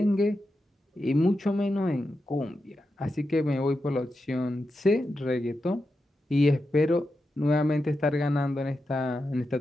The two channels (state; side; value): normal; both; correlation 0.89